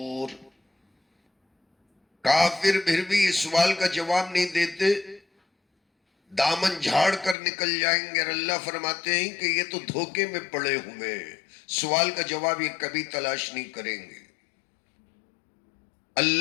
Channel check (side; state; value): right; drops out; at 7.4 s